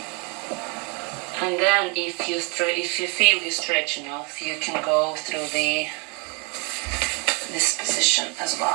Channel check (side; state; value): left; quieter; 33.1 dB